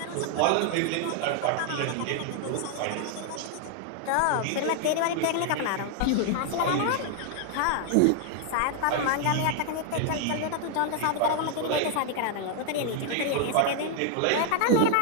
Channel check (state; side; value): different; both; correlation 0.00